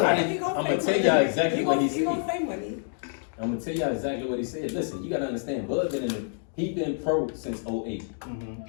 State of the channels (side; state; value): right; silent; digital silence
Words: tell y'all exactly what he He gonna said. say money. I'm gonna tell y'all exactly what he said. Listen, you gotta understand. Bud he been pro since 08.